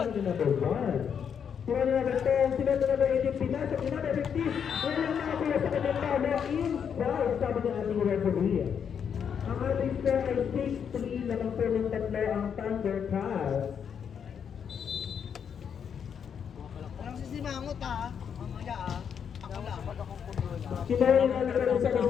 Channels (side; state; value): right; quieter; 7.6 dB